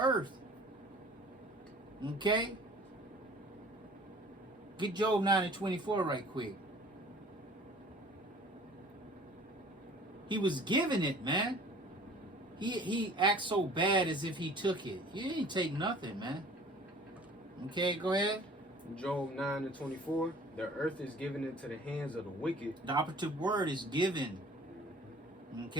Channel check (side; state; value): both; normal; correlation 0.49